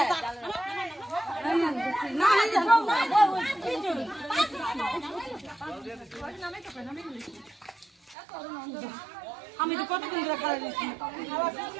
আমি তো কতক্ষণ ধরে খাওয়া দিচ্ছি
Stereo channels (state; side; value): drops out; left; at 8.2 s